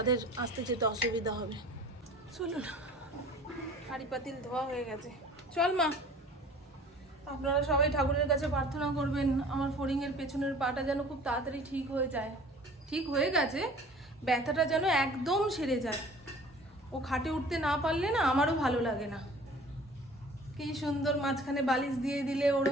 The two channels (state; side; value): normal; both; correlation 0.47